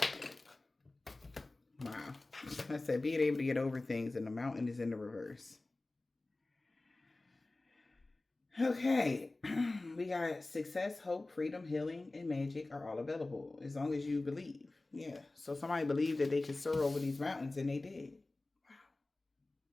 Wow. I said being able to get over things, and the mountain is in the reverse. Okay. We got success, hope, freedom, healing, and magic are all available as long as you believe. Yeah. So somebody believed that they could soar over these mountains, and they did. Wow.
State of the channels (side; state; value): right; quieter; 3.0 dB